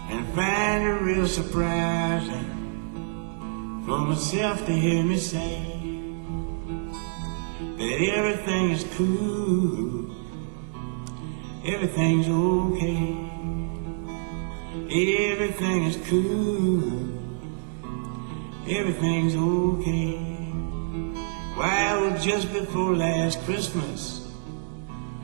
and I find it real surprising for myself to hear me say that everything is cool, everything's okay. Everything is cool, everything's okay. Why, it was just before last Christmas,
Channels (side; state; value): left; silent; digital silence